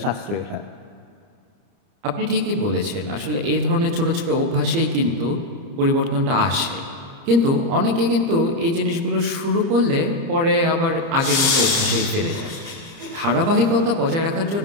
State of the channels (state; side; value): late; left; 30 ms